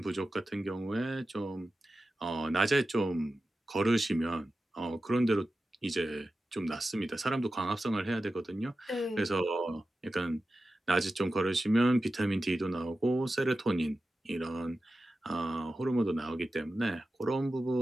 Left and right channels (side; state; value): both; normal; correlation 0.93